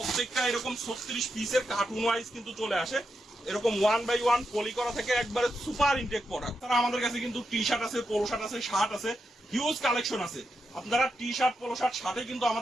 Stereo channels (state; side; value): normal; both; correlation 0.85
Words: এরকম 36 পিসের কার্টুন ওয়াইজ কিন্তু চলে আসে, এরকম 1 বাই 1 পলি করা থেকে একবারে সুপার ইনটেক প্রোডাক্ট। তারা আমাদের কাছে কিন্তু টি শার্ট আছে, পোলো শার্ট আছে, শার্ট আছে, হিউজ কালেকশন আছে। আপনারা টি শার্ট, পোলো শার্ট, শার্টে কিন্তু